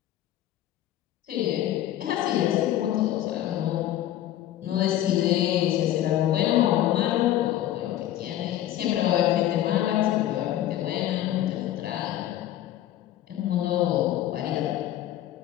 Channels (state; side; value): quieter; right; 12.8 dB